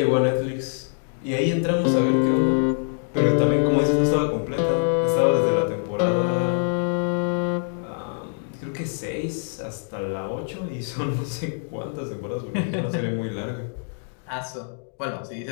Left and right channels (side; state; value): right; silent; digital silence